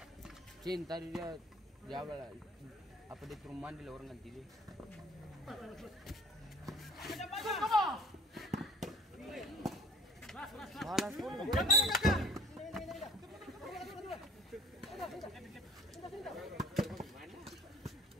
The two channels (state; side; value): normal; both; correlation 0.51